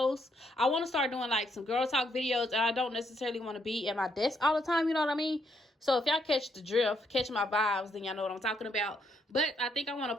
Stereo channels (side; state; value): both; normal; correlation 0.74